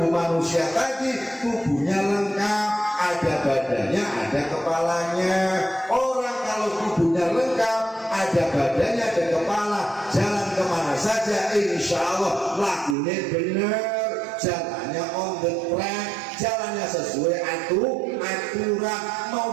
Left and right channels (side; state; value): left; drops out; at 13.0 s